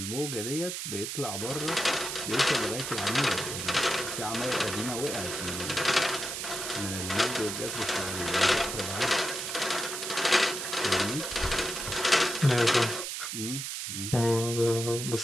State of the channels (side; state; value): right; noise; hiss, 5 dB below the sound